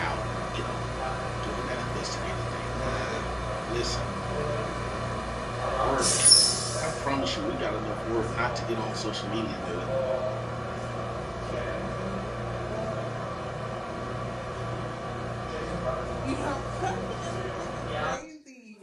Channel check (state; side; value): identical; both; correlation 1.00